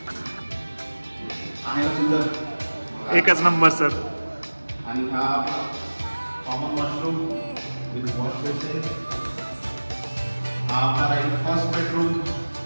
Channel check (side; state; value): both; inverted; correlation -1.00